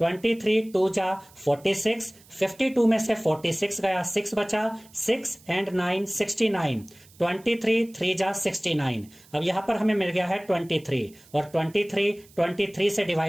2 जा 46, 52 में से 46 गया 6 बचा, 6 एंड 9 69, 23 3 जा 69। अब यहां पर हमें मिल गया है 23 और 23 से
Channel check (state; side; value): noise; right; hiss, 26 dB below the sound